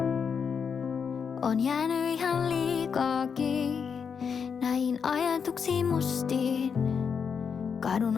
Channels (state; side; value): quieter; right; 6.5 dB